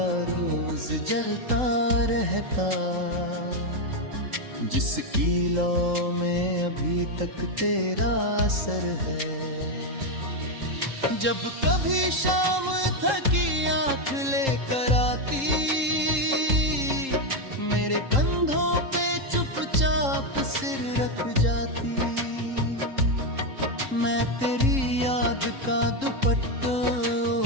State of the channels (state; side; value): late; left; 3.8 ms